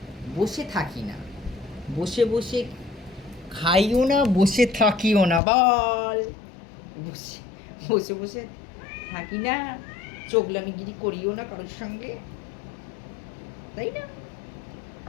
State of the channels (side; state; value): right; drops out; at 5.4 s